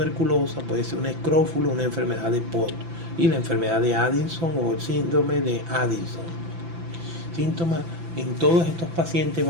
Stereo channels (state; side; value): late; left; 5.9 ms